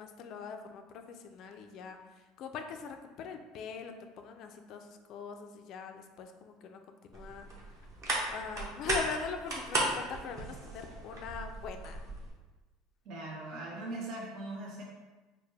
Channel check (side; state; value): both; normal; correlation 0.36